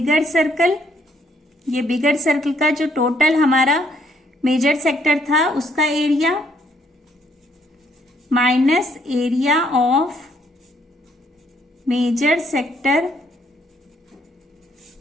circle. ये बिगर सर्कल का जो टोटल हमारा मेजर सेक्टर था उसका area minus area of major sector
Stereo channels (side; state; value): both; normal; correlation 0.69